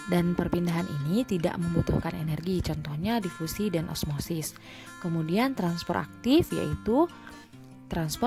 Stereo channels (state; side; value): identical; both; correlation 1.00